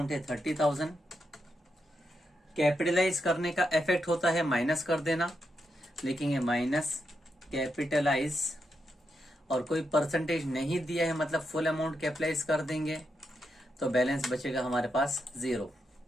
है 30,000। कैपिटलाइज करने का इफेक्ट होता है माइनस कर देना, लिखेंगे माइनस कैपिटलाइज और कोई परसेंटेज नहीं दिया है मतलब फुल अमाउंट कैपिटलाइज कर देंगे तो बैलेंस बचेगा हमारे पास 0।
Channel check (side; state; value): both; normal; correlation 0.84